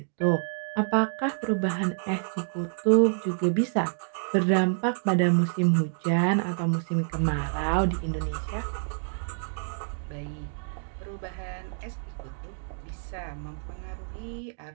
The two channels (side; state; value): left; silent; digital silence